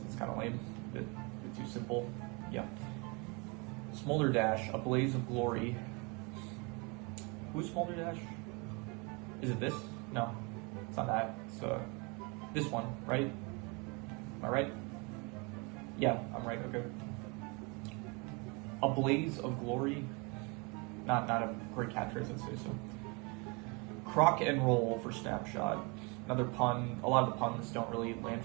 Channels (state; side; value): quieter; left; 29.1 dB